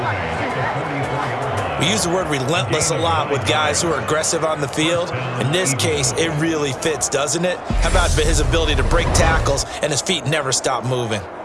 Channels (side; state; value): both; identical; correlation 1.00